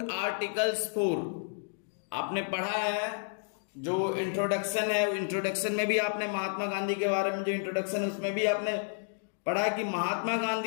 articles 4। आपने पढ़ा है जो इंट्रोडक्शन है, इंट्रोडक्शन में भी आपने महात्मा गांधी के बारे में जो इंट्रोडक्शन है उसमें भी आपने पढ़ा कि महात्मा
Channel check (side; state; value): right; silent; digital silence